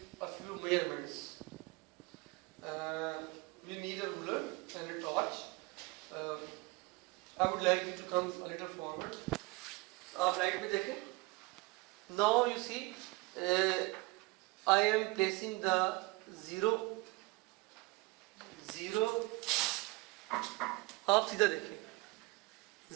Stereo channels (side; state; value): left; quieter; 23.6 dB